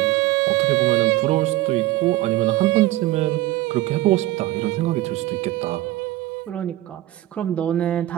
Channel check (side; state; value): left; quieter; 16.6 dB